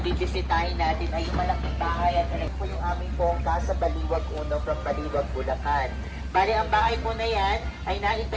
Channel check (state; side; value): identical; both; correlation 1.00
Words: bibisitahin natin ay yung malaking bahay at ito po yung aming pong Casa Baliwag Uno from Baliwag, Bulacan. Bali, ang bahay po na yan ay